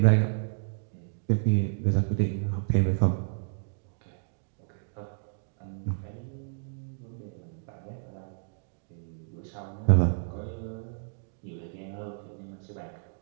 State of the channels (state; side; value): silent; left; digital silence